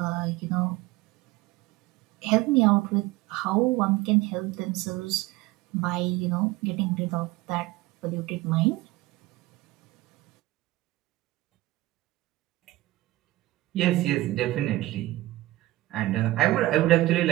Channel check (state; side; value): quieter; left; 17.9 dB